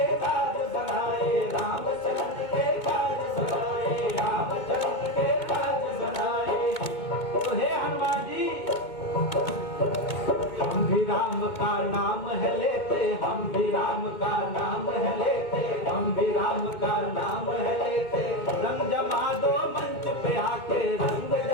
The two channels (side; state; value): right; late; 2.2 ms